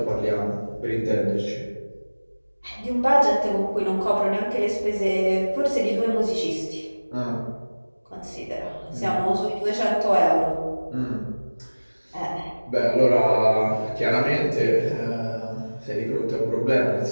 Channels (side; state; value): both; inverted; correlation -1.00